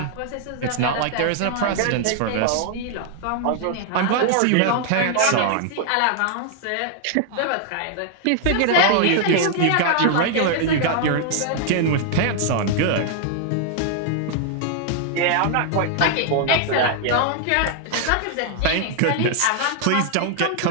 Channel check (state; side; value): different; both; correlation 0.00